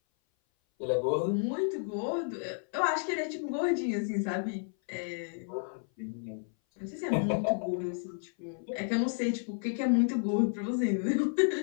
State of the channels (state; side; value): silent; right; 57 dB below the other